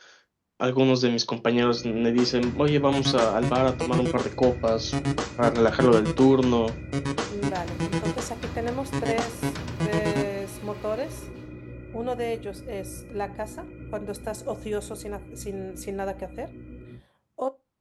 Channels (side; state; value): both; identical; correlation 1.00